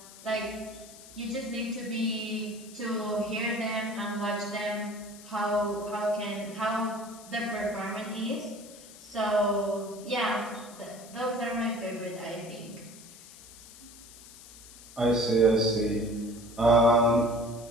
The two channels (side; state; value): left; noise; hiss, 18 dB below the sound